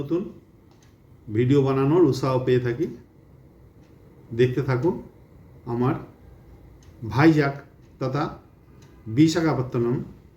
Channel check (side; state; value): both; identical; correlation 1.00